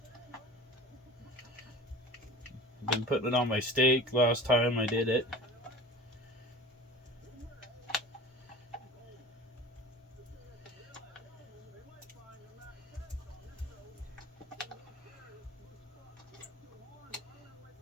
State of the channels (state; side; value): normal; both; correlation 0.39